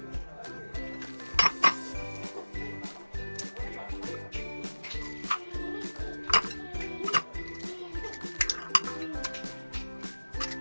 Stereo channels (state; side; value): inverted; both; correlation -1.00